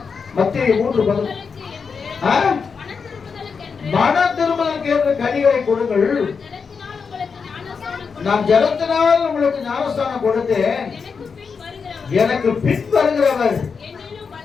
மத்தேயு 3:11. மன திரும்பலுக்கு ஏற்ற கனிகளை கொடுங்கள். நான் ஜலத்தினால் உங்களுக்கு ஞானஸ்தானம் கொடுத்தேன். எனக்கு பின் வருகிறவர்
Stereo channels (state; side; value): quieter; right; 5.6 dB